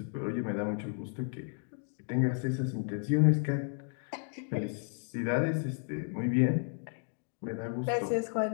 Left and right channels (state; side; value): silent; right; 56 dB below the other